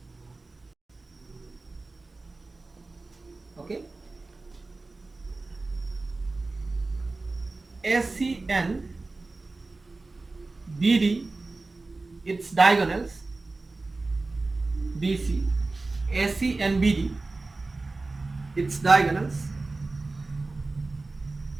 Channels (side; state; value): left; quieter; 3.4 dB